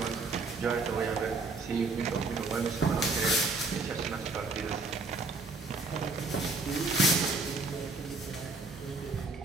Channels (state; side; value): quieter; left; 3.6 dB